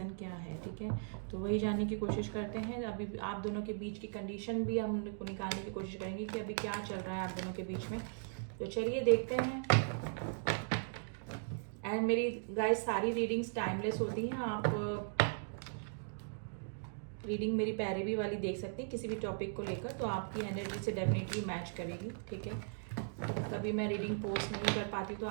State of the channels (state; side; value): silent; left; digital silence